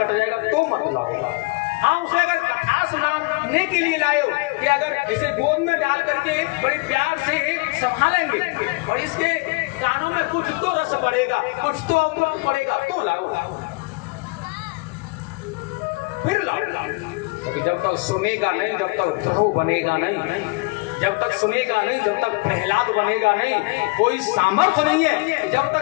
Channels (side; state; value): right; quieter; 27.8 dB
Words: जाएगा, तो मत लाओ। हाँ, उसे अगर कथा सुनाने के लिए लाओ कि अगर इसे गोद में डाल करके बड़े प्यार से संभालेंगे और इसके कानों में कुछ तो रस पड़ेगा, कुछ तो अमृत पड़ेगा, तो लाओ, फिर लाओ। क्योंकि जब तक सुनेगा नहीं, जब तक ध्रुव बनेगा नहीं, जब तक सुनेगा नहीं, जब तक प्रहलाद बनेगा नहीं, कोई सामर्थ्य नहीं है। जब